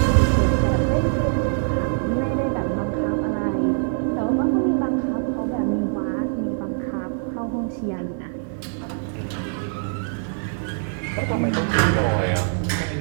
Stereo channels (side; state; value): left; silent; digital silence